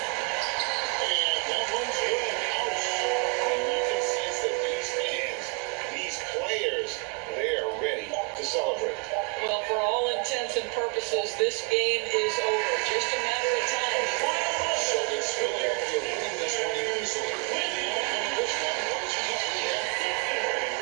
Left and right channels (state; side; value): quieter; left; 36.4 dB